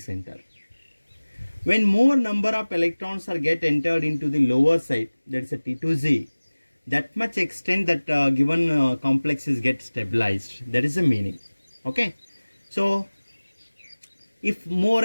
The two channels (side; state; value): both; inverted; correlation -1.00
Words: When more number of electrons are get entered into the lower side, that is a T2Z, that much extent that given complex is get stabilized. That is the meaning. Okay, so if more